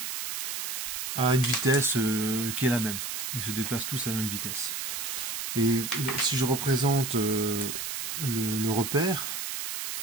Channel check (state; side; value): noise; right; hiss, 3 dB below the sound